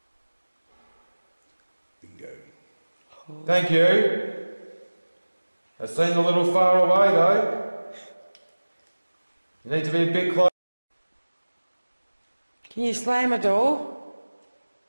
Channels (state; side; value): inverted; both; correlation -1.00